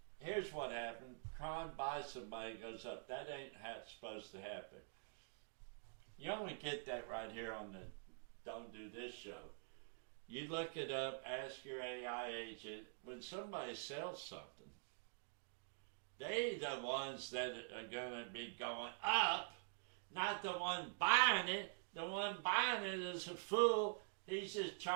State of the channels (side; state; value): left; silent; digital silence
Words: Here's what happened. Kron buys somebody, goes up. That ain't how it's supposed to happen. You only get that right here on the Don't Do This show. You look it up, ask your AI agent. When somebody sells something, they the ones that are going to be going up, not the one buying it. The one buying it is a fool. He's just